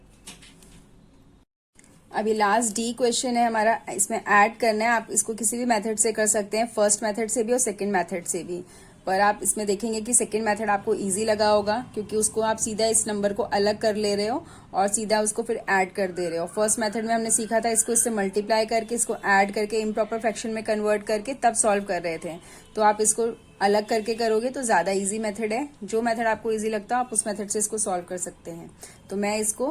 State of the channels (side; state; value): both; identical; correlation 1.00